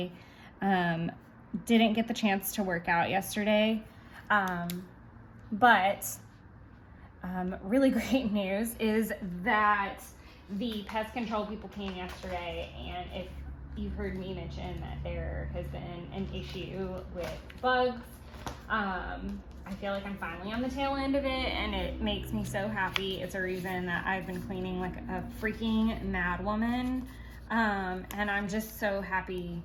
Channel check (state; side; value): identical; both; correlation 1.00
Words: didn't get the chance to work out yesterday. But really great news is that the pest control people came yesterday, and if you've heard me mention that there has been an issue with bugs, I feel like I'm finally on the tail end of it, and it makes me so happy. It's a reason that I've been cleaning like a freaking mad woman, and I'm just so happy